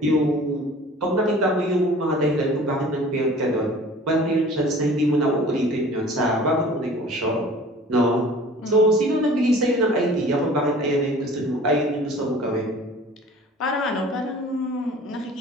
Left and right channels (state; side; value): normal; both; correlation 0.46